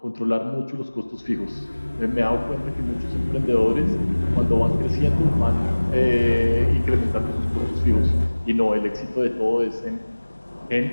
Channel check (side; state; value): both; inverted; correlation -1.00